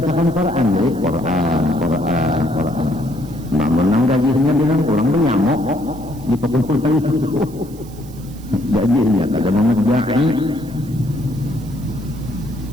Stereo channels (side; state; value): right; noise; hiss, 23 dB below the sound